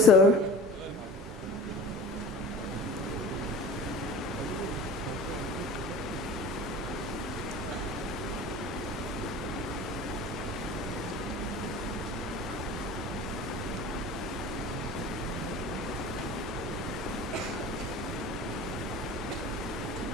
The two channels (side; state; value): both; normal; correlation 0.39